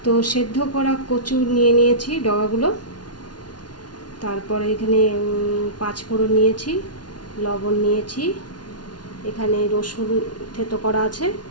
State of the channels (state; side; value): late; right; 0.70 ms